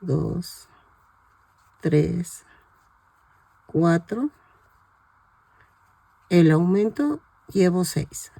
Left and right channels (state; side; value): identical; both; correlation 1.00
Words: 2, 3, 4, el aumento llevo 6